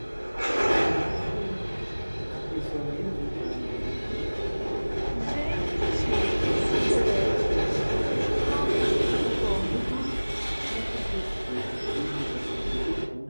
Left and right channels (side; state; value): both; inverted; correlation -1.00